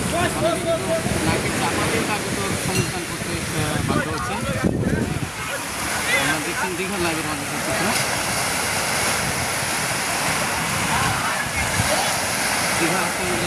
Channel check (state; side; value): identical; both; correlation 1.00